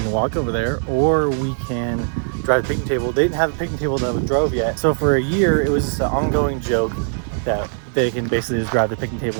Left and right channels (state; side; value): silent; left; digital silence